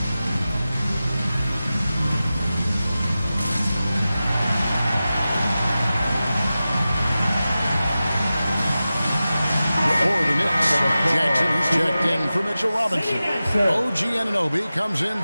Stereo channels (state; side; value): inverted; both; correlation -0.94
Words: For Mitchell Robinson. OG Anunoby comes in